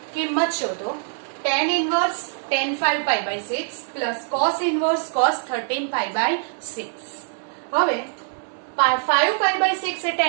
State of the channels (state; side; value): silent; left; digital silence